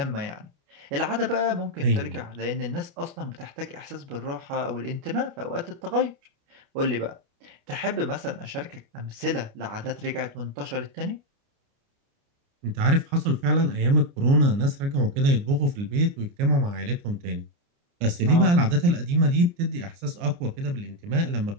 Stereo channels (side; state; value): left; late; 29 ms